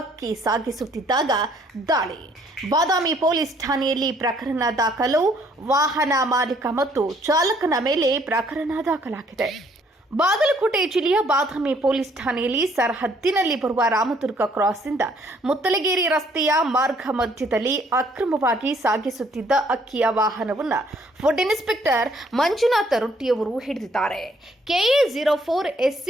ಅಕ್ಕಿ ಸಾಗಿಸುತ್ತಿದ್ದಾಗ ದಾಳಿ. ಬಾದಾಮಿ ಪೊಲೀಸ್ ಠಾಣೆಯಲ್ಲಿ ಪ್ರಕರಣ ದಾಖಲು. ವಾಹನ ಮಾಲೀಕ ಮತ್ತು ಚಾಲಕನ ಮೇಲೆ ಪ್ರಕರಣ ದಾಖಲಾಗಿದೆ. ಬಾಗಲಕೋಟೆ ಜಿಲ್ಲೆಯ ಬಾದಾಮಿ ಪೊಲೀಸ್ ಠಾಣೆಯಲ್ಲಿ ಸರಹದ್ದಿನಲ್ಲಿ ಬರುವ ರಾಮದುರ್ಗ ಕ್ರಾಸ್ನಿಂದ ಮುತ್ತಲಗೇರಿ ರಸ್ತೆಯ ಮಾರ್ಗ ಮಧ್ಯದಲ್ಲಿ ಅಕ್ರಮವಾಗಿ ಸಾಗಿಸುತ್ತಿದ್ದ ಅಕ್ಕಿಯ ವಾಹನವನ್ನು ಫುಡ್ ಇನ್ಸ್ಪೆಕ್ಟರ್ ಮಂಜುನಾಥ ರೊಟ್ಟಿಯವರು ಹಿಡಿದಿದ್ದಾರೆ. KA04 SC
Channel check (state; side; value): normal; both; correlation 0.64